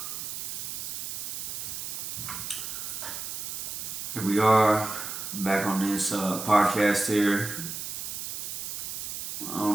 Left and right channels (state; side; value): noise; right; hiss, 5 dB below the sound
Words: here we are back on this podcast here. I don't